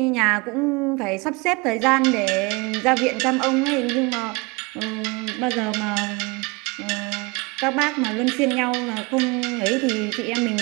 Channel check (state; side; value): quieter; left; 27.1 dB